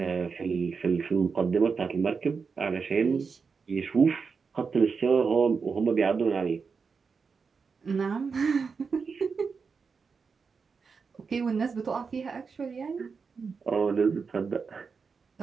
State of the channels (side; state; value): left; quieter; 5.3 dB